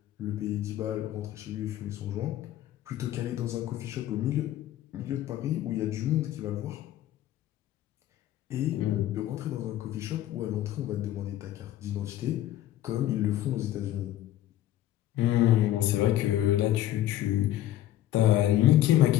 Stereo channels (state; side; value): quieter; right; 13.3 dB